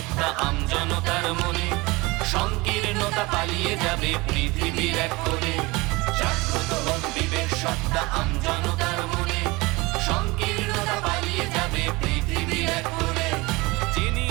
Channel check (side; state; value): left; quieter; 23.4 dB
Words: আমজনতার মনে, সংকীর্ণতা পালিয়ে যাবে পৃথিবীর এক কোণে। জাগ্রত হোক বিবেক সত্তা আমজনতার মনে, সংকীর্ণতা পালিয়ে যাবে পৃথিবীর এক কোণে। যিনি